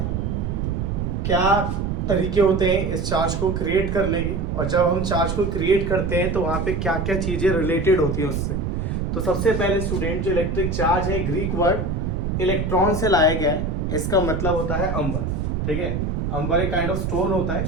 क्या तरीके होते हैं इस चार्ज को क्रिएट करने के, और जब हम चार्ज को क्रिएट करते हैं तो वहां पे क्या क्या चीजें रिलेटेड होती है उससे। तो सबसे पहले स्टूडेंट, जो इलेक्ट्रिक चार्ज है ग्रीक वर्ड इलेक्ट्रॉन से लाया गया है। इसका मतलब होता है अंबर। ठीक है, अंबर एक काइंड ऑफ स्टोन होता है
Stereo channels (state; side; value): noise; right; rumble, 1 dB below the sound